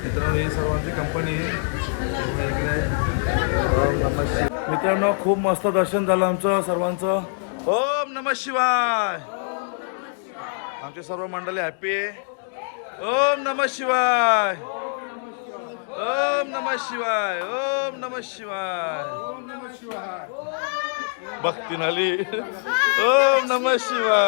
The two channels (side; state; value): right; silent; digital silence